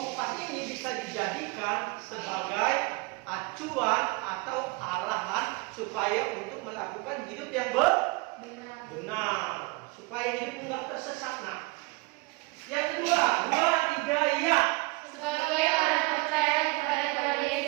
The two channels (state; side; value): quieter; left; 26.1 dB